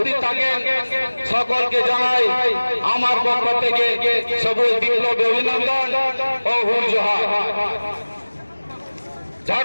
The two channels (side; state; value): both; inverted; correlation -1.00